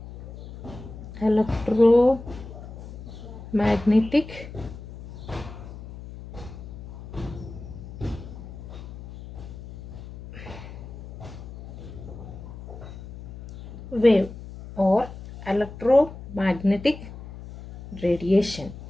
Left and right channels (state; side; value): noise; left; hum, 13 dB below the sound